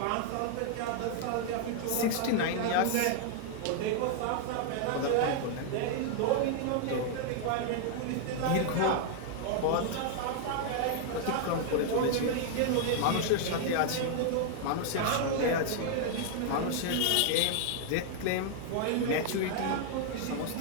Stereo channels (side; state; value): both; different; correlation 0.00